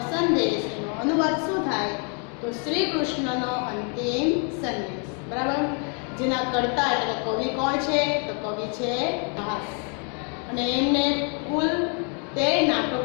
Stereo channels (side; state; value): right; quieter; 39.6 dB